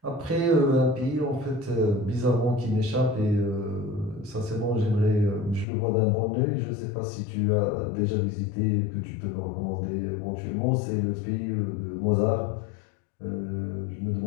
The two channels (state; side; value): drops out; right; at 5.7 s